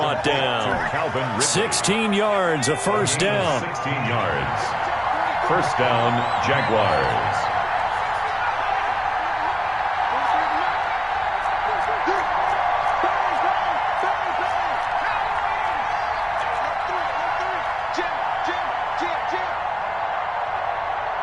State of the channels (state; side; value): identical; both; correlation 1.00